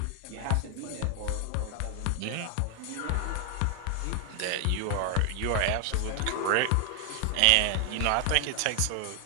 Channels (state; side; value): different; both; correlation 0.00